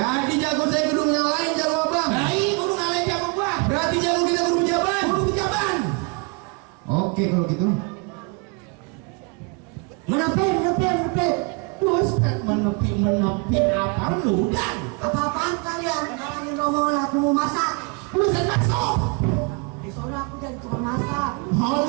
jago saya kudu ngalahin jago abang. Nah iya kudu ngalahin jago gua. Berarti jago kita kudu pejabat. Kudu pejabat. Oke kalau gitu. Menepi. Terus kan menepi apa lu dan? Apa-apaan kalian? Ngalahin rombongan aku mau masak. Lu bisa masuk. Soalnya aku jadi tukang masak. Oh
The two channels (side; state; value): left; quieter; 31.8 dB